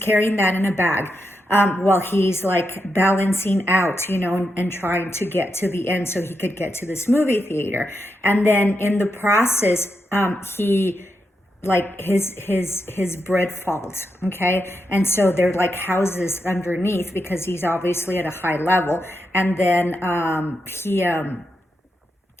that in a bag while he's like balancing out, and trying to get to the end so he could get to this movie theater. And then in the process, he like his bread falls. Okay, and so they're like houses underneath because he's obviously at a high level. And then he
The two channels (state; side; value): normal; both; correlation 0.85